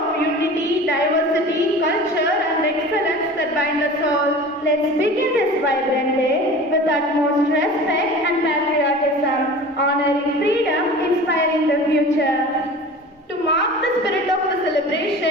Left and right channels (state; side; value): normal; both; correlation 0.38